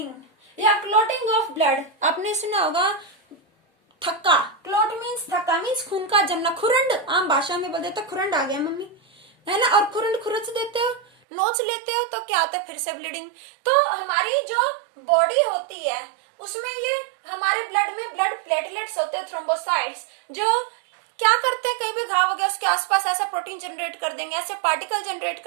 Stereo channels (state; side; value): drops out; left; at 11.1 s